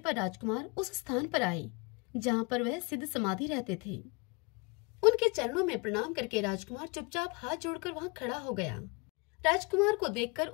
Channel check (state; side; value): quieter; right; 30.0 dB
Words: राजकुमार उस स्थान पर आए जहां पर वह सिद्ध समाधि रहते थे। उनके चरणों में प्रणाम करके राजकुमार चुपचाप हाथ जोड़कर वहां खड़ा हो गया। राजकुमार को देखकर